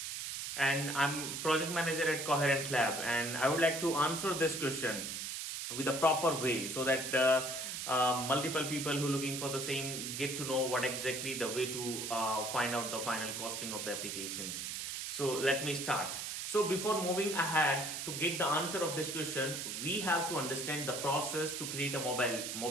and I'm project manager at Coherent Lab and I would like to answer this question with a proper way so that multiple people who are looking for the same get to know what exactly the way to find out the final costing of the application. So let me start. So before moving ahead to get the answer of this question, we have to understand the process to create a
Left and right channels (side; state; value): right; noise; hiss, 5 dB below the sound